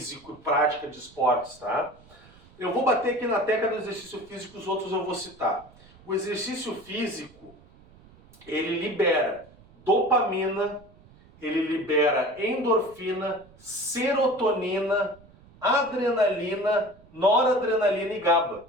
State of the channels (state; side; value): noise; right; rumble, 25 dB below the sound